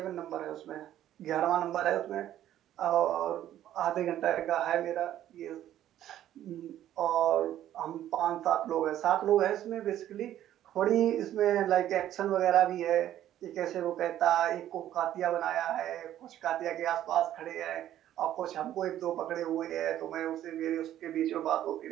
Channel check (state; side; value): quieter; left; 12.1 dB